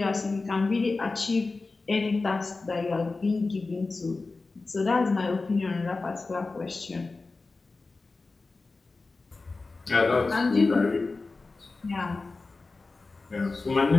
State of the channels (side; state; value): right; quieter; 3.7 dB